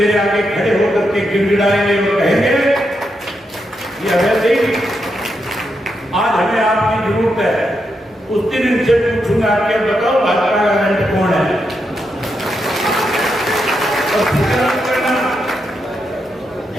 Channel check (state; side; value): normal; both; correlation 0.83